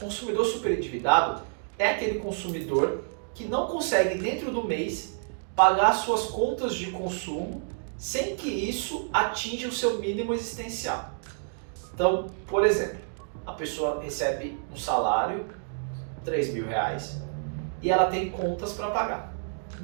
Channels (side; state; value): left; silent; digital silence